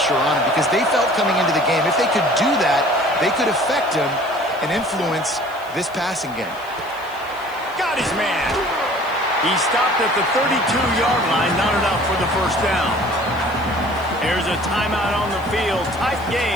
on him? Because they felt coming into the game, if they could do that, they could affect him and influence this passing game. Got his man. He stopped at the 32-yard line, not enough for the first down. There's a timeout on the field. Tight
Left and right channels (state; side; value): noise; left; hiss, 24 dB below the sound